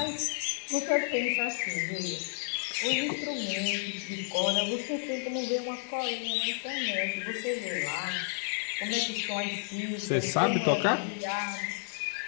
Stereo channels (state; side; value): silent; right; 57 dB below the other